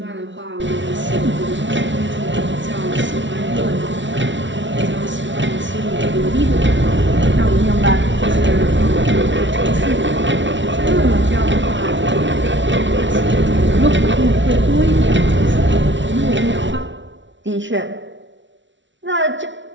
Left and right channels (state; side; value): late; left; 0.55 ms